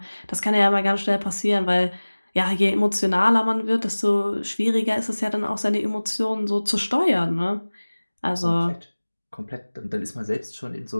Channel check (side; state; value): both; inverted; correlation -1.00